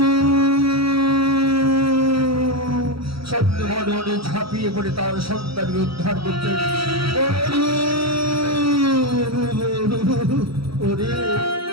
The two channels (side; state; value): left; late; 0.75 ms